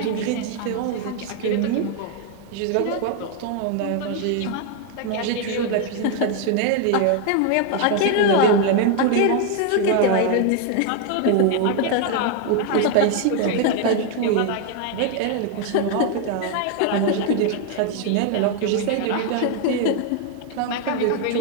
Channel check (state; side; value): different; both; correlation 0.00